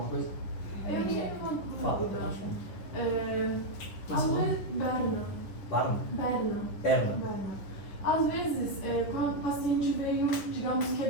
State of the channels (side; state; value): right; late; 10 ms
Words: coisa? Eu tinha uma Fala. dúvida. Mas Às não. vezes, Barna? Berna. Perna. Às vezes, quando o paciente veio, digamos,